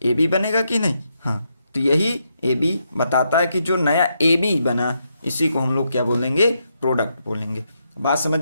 AB बनेगा कि नहीं? हाँ, तो यही AB बताता है कि जो नया AB बना इसी को हम लोग क्या बोलेंगे? प्रोडक्ट बोलेंगे। बात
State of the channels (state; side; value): inverted; both; correlation -0.80